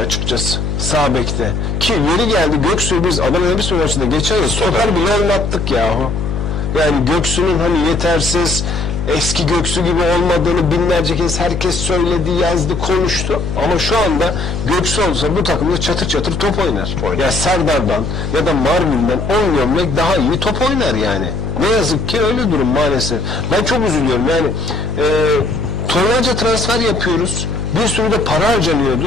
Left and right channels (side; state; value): left; noise; hum, 3 dB below the sound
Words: Sağ bekte. Ki yeri geldi Göksu'yu biz Adana Demirspor maçında geçen yıl stoper bile oynattık yahu. Yani Göksu'nun hani yetersiz, eski Göksu gibi olmadığını binlerce kez herkes söyledi, yazdı, konuştu. Ama şu anda Göksu olsa bu takımda çatır çatır top oynar. Ya Serdar'dan ya da Marvin'den 10 gömlek daha iyi top oynar yani. Ne yazık ki öyle durum maalesef. Ben çok üzülüyorum yani. Tonlarca transfer yapıyoruz. Bir sürü de para